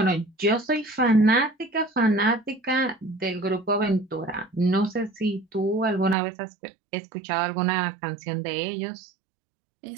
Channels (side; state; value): left; drops out; at 6.2 s